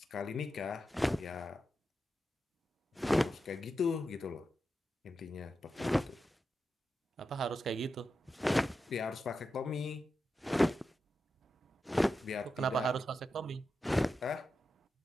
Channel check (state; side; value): normal; both; correlation 0.89